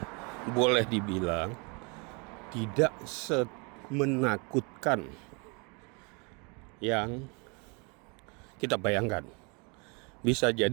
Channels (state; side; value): quieter; left; 32.3 dB